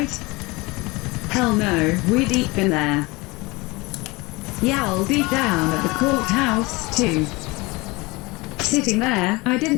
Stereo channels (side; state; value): right; quieter; 23.9 dB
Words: Hell no, we deep in there. Y'all deep down at the courthouse, too. Sitting there, I